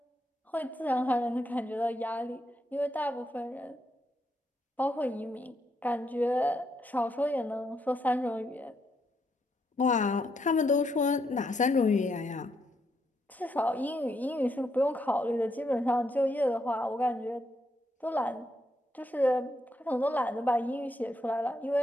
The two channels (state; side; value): normal; both; correlation 0.78